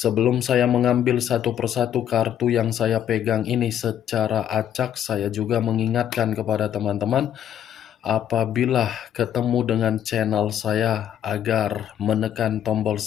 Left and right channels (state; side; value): quieter; right; 10.1 dB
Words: saya mengambil satu persatu kartu yang saya pegang ini secara acak, saya juga mengingatkan kepada teman-teman, apabila ketemu dengan channel saya, agar menekan tombol